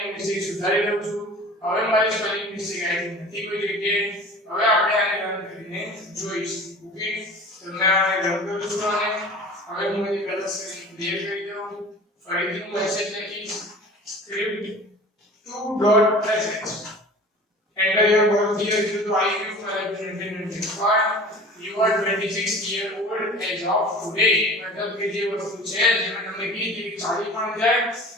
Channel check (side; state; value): both; normal; correlation 0.41